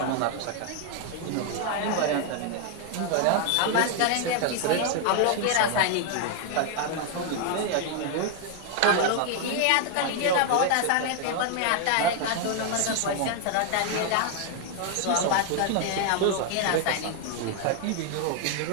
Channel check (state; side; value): different; both; correlation 0.00